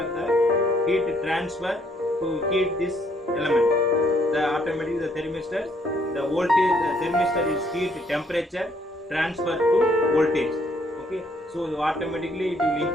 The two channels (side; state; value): both; normal; correlation 0.68